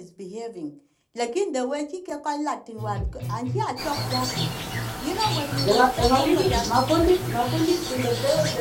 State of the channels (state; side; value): identical; both; correlation 1.00